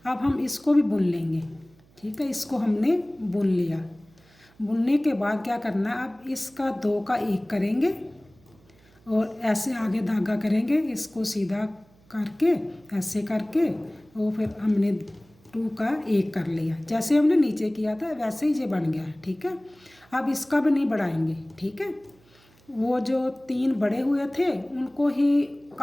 अब हम इसको भी बुन लेंगे, ठीक है। इसको हमने बुन लिया। बुनने के बाद क्या करना है, अब इसका 2 का 1 करेंगे और ऐसे आगे धागा करेंगे, इसको सीधा करके ऐसे करके, और फिर हमने 2 का 1 कर लिया। जैसे हमने नीचे किया था वैसे ही ये बन गया, ठीक है। अब इसका भी नहीं बढ़ाएंगे, ठीक है। वो जो 3 बड़े हुए थे उनको ही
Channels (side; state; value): right; noise; hum, 30 dB below the sound